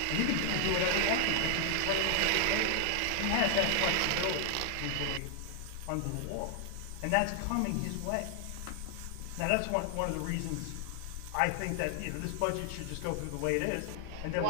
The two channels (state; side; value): different; both; correlation 0.00